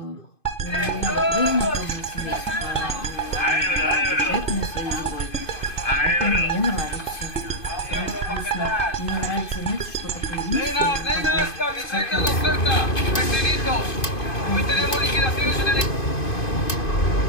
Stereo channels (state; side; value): late; right; 2.5 ms